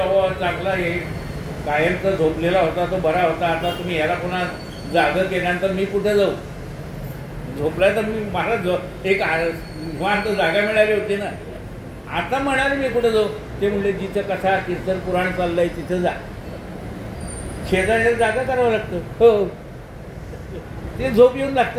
चांगला हे कायमचा झोपलेला होता तो बरा होता, आता तुम्ही ह्याला पुन्हा जागं केल्यानंतर मी कुठे जाऊ? झोपला तर मी मला एक निवांत जागा मिळाली होती ना. आता म्हणाले मी कुठे जाऊ? ते म्हणले जिथं कथा कीर्तन पुराण चाललंय तिथं जा. शेजारी जागा करावं लागतं. हो, ते झोप येऊन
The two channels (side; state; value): both; identical; correlation 1.00